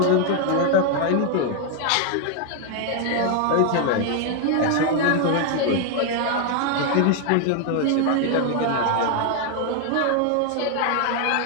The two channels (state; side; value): different; both; correlation 0.00